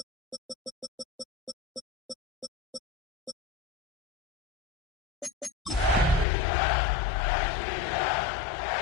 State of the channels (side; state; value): right; drops out; at 6.2 s